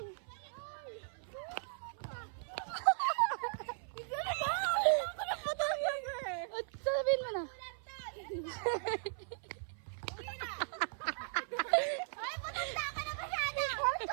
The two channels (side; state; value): left; silent; 52 dB below the other